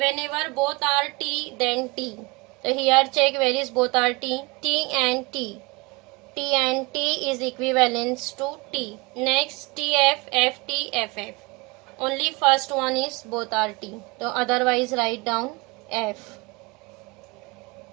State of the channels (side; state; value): left; quieter; 25.9 dB